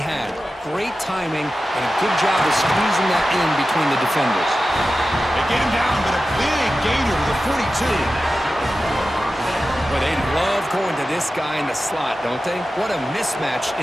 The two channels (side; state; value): both; normal; correlation 0.94